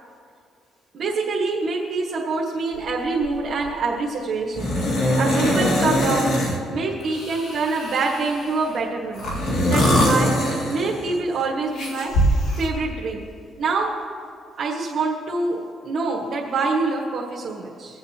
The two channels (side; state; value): both; normal; correlation 0.72